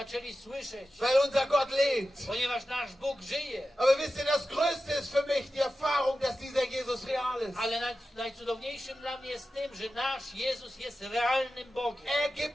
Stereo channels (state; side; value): normal; both; correlation 0.93